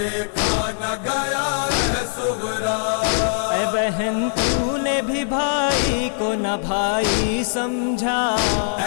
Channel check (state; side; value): silent; right; digital silence